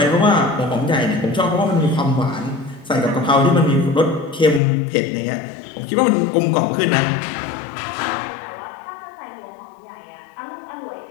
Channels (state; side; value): drops out; right; at 4.6 s